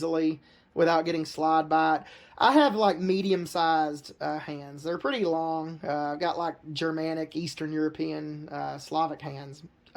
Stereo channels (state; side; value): identical; both; correlation 1.00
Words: without getting slide by it. I have like medium-sized hands. They're pretty long. I've got like Germanic, Eastern European, Slavic hands.